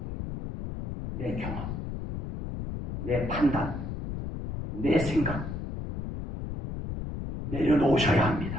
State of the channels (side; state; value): left; noise; rumble, 6 dB below the sound